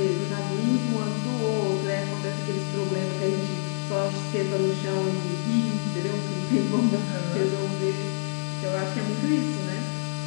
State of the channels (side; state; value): right; silent; digital silence